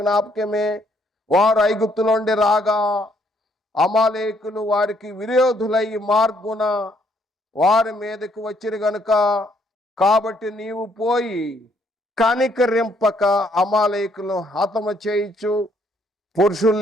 వారు ఐగుప్తులో నుండి రాగా అమాలేకులు వారికి విరోధులై మార్గున వారి మీదకు వచ్చిరు గనుక, కాబట్టి నీవు పోయి కనికరింపక అమాలేకులను హతము చేయించు.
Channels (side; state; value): both; normal; correlation 0.69